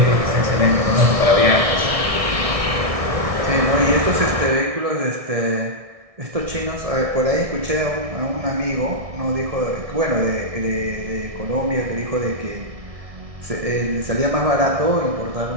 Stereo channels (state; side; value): late; left; 1.6 ms